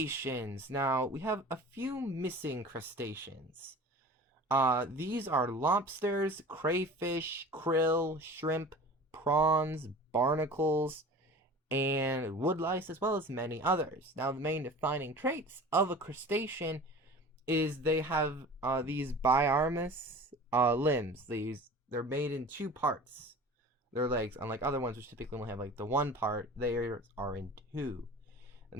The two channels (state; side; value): normal; both; correlation 0.39